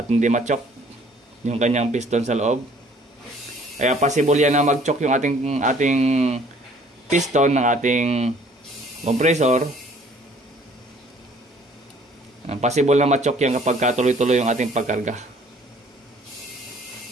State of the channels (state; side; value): normal; both; correlation 0.57